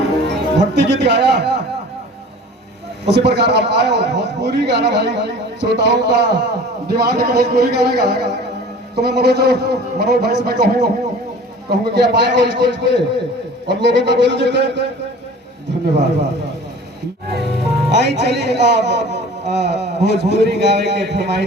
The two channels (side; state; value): both; normal; correlation 0.43